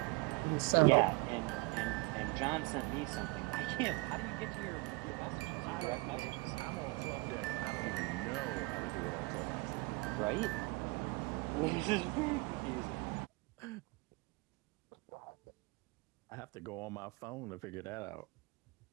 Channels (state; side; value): quieter; left; 26.2 dB